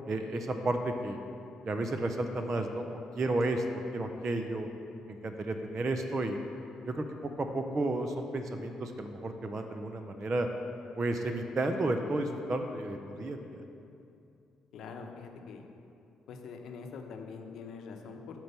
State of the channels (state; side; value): normal; both; correlation 0.84